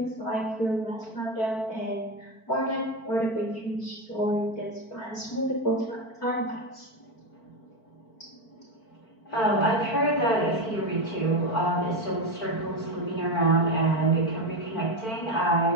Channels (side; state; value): right; late; 4.5 ms